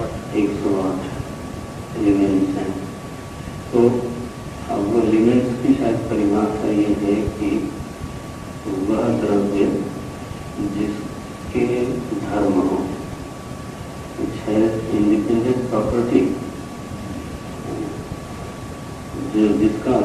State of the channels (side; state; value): both; identical; correlation 1.00